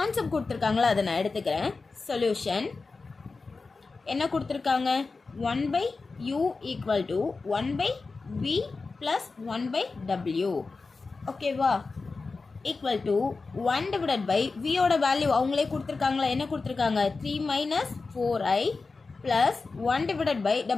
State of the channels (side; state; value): right; quieter; 4.1 dB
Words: கொடுத்துருக்காங்களா, அதை நான் எடுத்துக்கிறேன். சொல்யூஷன் என்ன கொடுத்துருக்காங்க? 1/u equal to 1/v plus 1/w. ஓகேவா? ஈக்குவல் டு 1 டிவைடட் பை வியோட வேல்யூ அவங்களே கொடுத்துருக்காங்களா? என்ன கொடுத்துருக்காங்க? 3 minus 4i plus 1 divided by